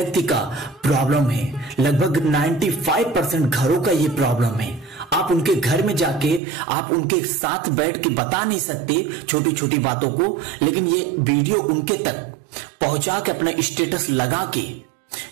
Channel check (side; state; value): left; drops out; at 6.4 s